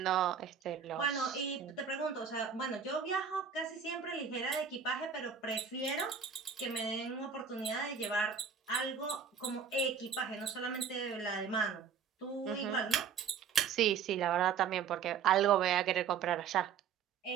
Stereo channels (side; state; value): left; quieter; 6.8 dB